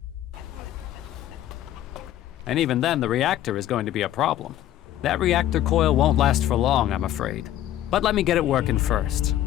And even then, the reactor is going to be a problem. That reactor coil won't last for long, I'm afraid. But let me get it working first.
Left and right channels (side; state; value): right; quieter; 12.5 dB